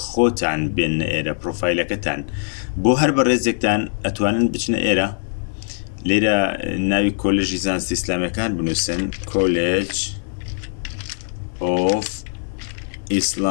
خۆتان بێنە ئێرە، پرۆفایلەکەتان بۆ هەر بەڕێزێکتان ئەتوانن بچنە ئێرە. لێرە ناوی کۆلێژی زانستی ئیسلامیەکان بنووسن، کۆلێج of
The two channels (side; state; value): right; silent; 59 dB below the other